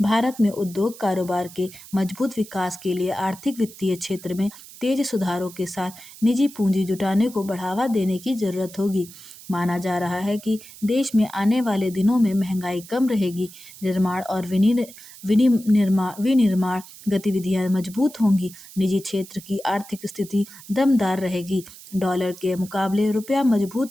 भारत में उद्योग कारोबार के मजबूत विकास के लिए आर्थिक वित्तीय क्षेत्र में तेज सुधारों के साथ निजी पूंजी जुटाने को बढ़ावा देने की जरूरत होगी। माना जा रहा है कि देश में आने वाले दिनों में महंगाई कम रहेगी, निर्माण और विनिर्माण गतिविधियां मजबूत होंगी, निजी क्षेत्र की आर्थिक स्थिति दमदार रहेगी, डॉलर के मुकाबले रुपया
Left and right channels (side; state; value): right; noise; hiss, 18 dB below the sound